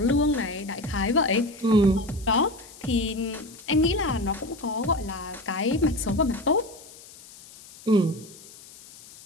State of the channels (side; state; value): left; noise; hiss, 20 dB below the sound